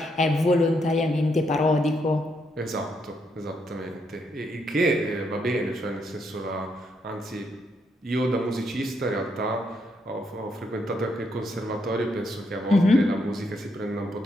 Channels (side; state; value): both; normal; correlation 0.77